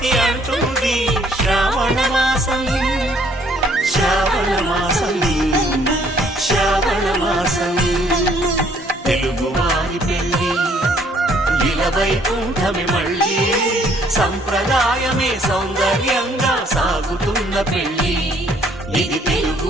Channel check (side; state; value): both; normal; correlation 0.63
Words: అంటుంది శ్రావణ మాసం శ్రావణ మాసం శ్రావణ మాసం తెలుగువారి పెళ్ళి ఇలవైకుంఠమే మళ్ళీ సంప్రదాయమే సౌందర్యంగా సాగుతున్న పెళ్ళి ఇది